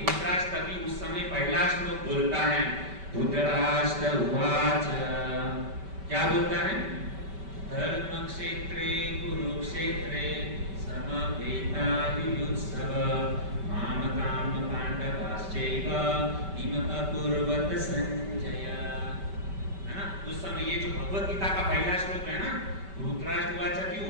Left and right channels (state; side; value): late; left; 5.2 ms